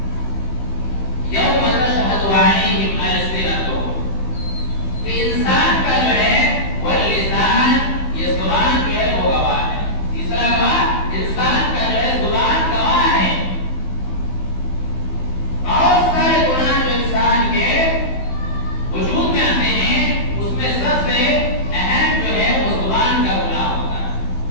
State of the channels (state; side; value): late; right; 15 ms